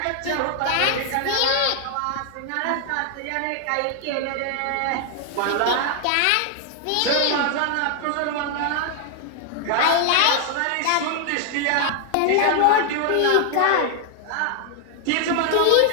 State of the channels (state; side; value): different; both; correlation 0.00